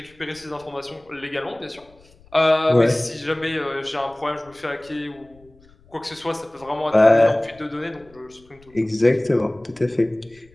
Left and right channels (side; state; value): left; noise; rumble, 28 dB below the sound